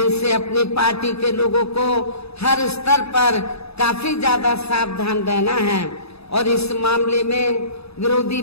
अपनी पार्टी के लोगों को हर स्तर पर काफी ज्यादा सावधान रहना है। और इस मामले में विरोधी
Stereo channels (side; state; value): right; late; 0.79 ms